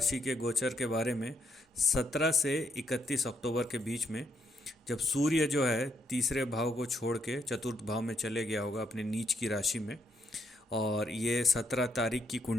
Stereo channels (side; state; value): both; normal; correlation 0.76